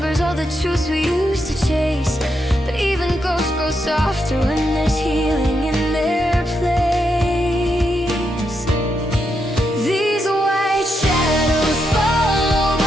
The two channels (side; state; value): both; normal; correlation 0.82